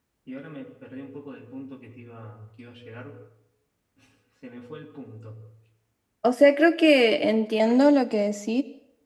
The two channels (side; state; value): both; identical; correlation 1.00